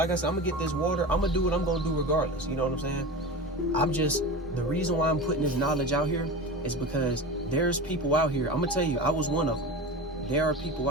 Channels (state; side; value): normal; both; correlation 0.28